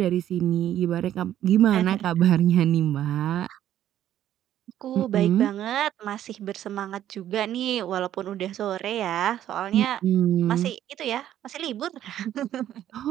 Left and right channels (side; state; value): left; quieter; 11.6 dB